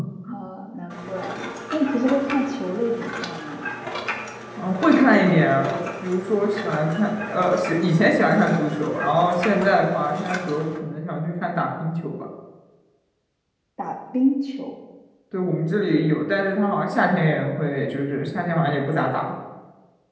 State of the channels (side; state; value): both; identical; correlation 1.00